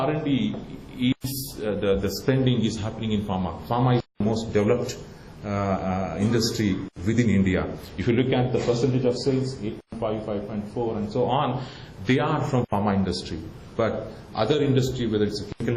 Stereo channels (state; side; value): identical; both; correlation 1.00